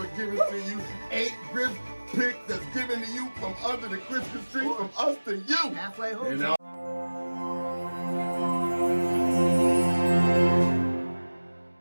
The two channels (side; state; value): both; inverted; correlation -1.00